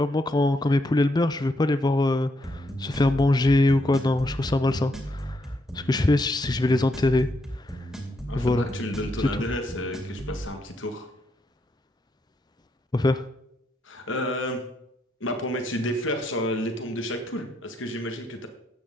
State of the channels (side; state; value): both; normal; correlation 0.77